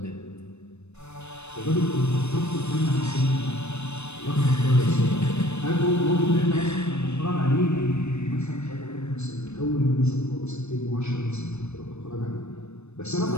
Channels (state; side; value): late; right; 0.81 ms